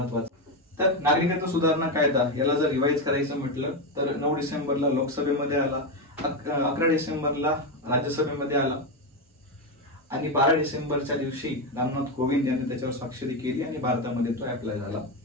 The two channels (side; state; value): both; normal; correlation 0.10